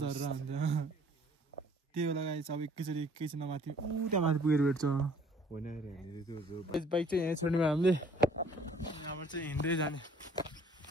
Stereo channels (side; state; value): both; normal; correlation 0.56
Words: हुन्छ त्यही बेला गाई अब एकैछिन माथि ऊ त्यहाँ माथि पुगेर भेट्छ बाइक चाहिँ यहाँ छोड्ने भयो हामीले यहाँबाट चाहिँ हिँड्दै जाने